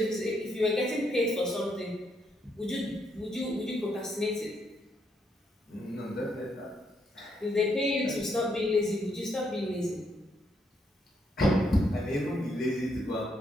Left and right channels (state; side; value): normal; both; correlation 0.76